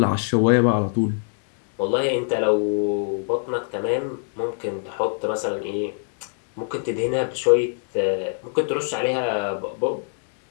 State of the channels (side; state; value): right; silent; digital silence